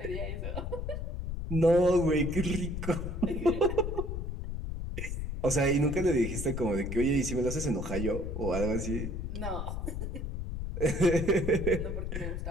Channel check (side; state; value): left; noise; rumble, 4 dB below the sound